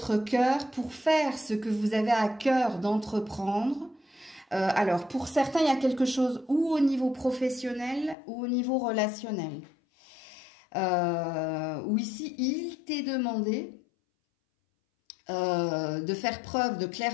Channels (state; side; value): drops out; right; at 8.2 s